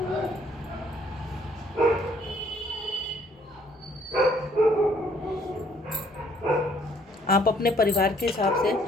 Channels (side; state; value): both; normal; correlation 0.63